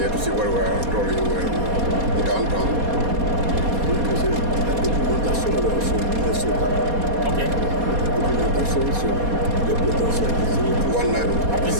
to see where we are going, downtown. Donc c'est la documentation alors sur Minnesota. Ok. La documentation sur les potentialités.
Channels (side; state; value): left; late; 4.2 ms